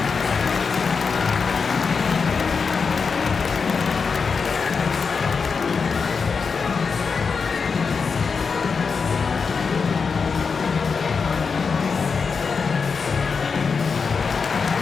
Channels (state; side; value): quieter; right; 5.3 dB